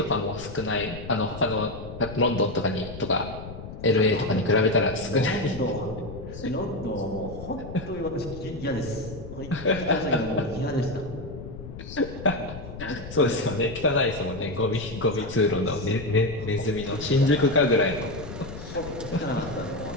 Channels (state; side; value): noise; left; rumble, 12 dB below the sound